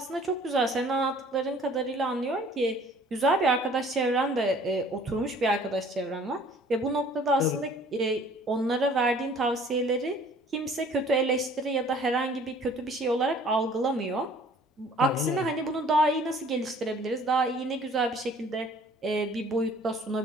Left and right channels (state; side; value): normal; both; correlation 0.53